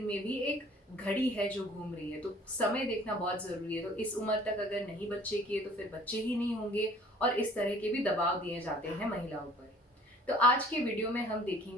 में भी एक घड़ी है जो घूम रही है। तो समय देखना बहुत जरूरी है। तो इस उम्र तक अगर नहीं बच्चे किए तो फिर बच्चे ही नहीं होंगे, और इस तरह के भी दबाव दिए जाते हैं महिलाओं पर। तो आज के वीडियो में हम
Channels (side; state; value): both; normal; correlation 0.53